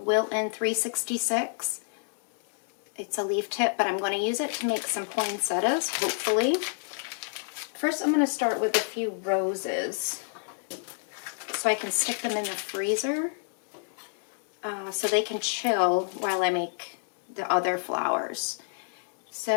366. It's a leaf tip, but I'm going to use it to make some poinsettias, hopefully. First, I'm going to start with a few roses so I can stick them in the freezer so they can chill while I make the other flowers.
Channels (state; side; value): silent; right; digital silence